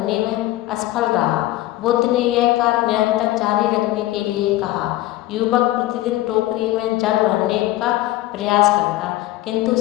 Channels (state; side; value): quieter; right; 16.3 dB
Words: में असफल रहा। बुद्ध ने यह कार्य निरंतर जारी रखने के लिए कहा। युवक प्रतिदिन टोकरी में जल भरने का प्रयास करता, किंतु